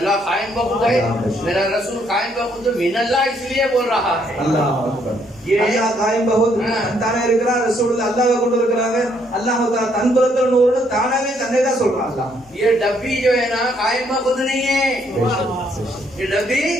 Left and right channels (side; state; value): both; normal; correlation 0.70